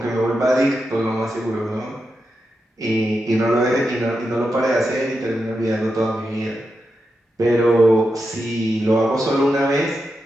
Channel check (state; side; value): normal; both; correlation 0.87